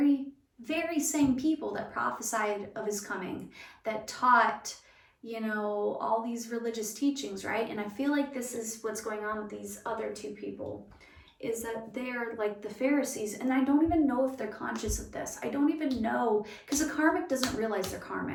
very same people that prophesied of his coming, that taught, you know, all these religious teachings, right? And I feel like this is what's going on with these other two people, is that they're like the Pharisees, and I don't even know if they're conscious of this. I don't even know, because a karmic doesn't realize they're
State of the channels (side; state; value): both; identical; correlation 1.00